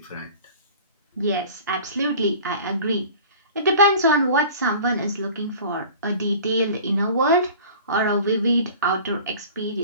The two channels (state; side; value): inverted; both; correlation -0.42